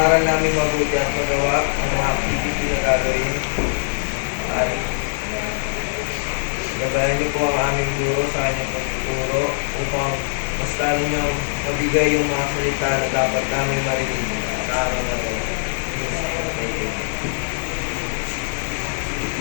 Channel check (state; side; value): silent; right; 64 dB below the other